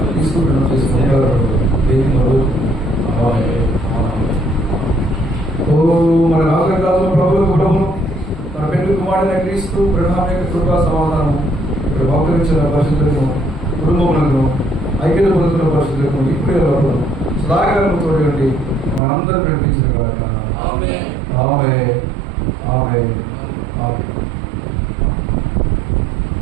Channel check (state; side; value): drops out; left; at 19.0 s